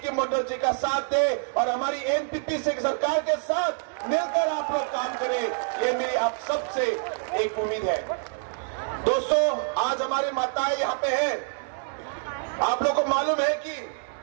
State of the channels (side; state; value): left; silent; digital silence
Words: मंडल जी का साथ दें और हमारी एनपीपी से सरकार के साथ मिलकर आप लोग काम करें। ये मेरी आप सबसे एक उम्मीद है। दोस्तों, आज हमारी माताएं यहाँ पे हैं। आप लोगों को मालूम है कि